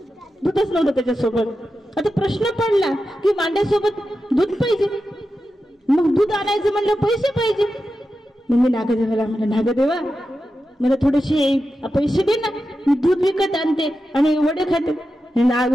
दूधच नव्हतं त्याच्यासोबत. आता प्रश्न पडला की मांड्यासोबत दूध पाहिजे, मग दूध आणायचं म्हणलं पैसे पाहिजे. मग मी नागदेवाला म्हणलं, नागदेवा मला थोडेसे पैसे दे ना, मी दूध विकत आणते आणि वडे खाते.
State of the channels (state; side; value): normal; both; correlation 0.91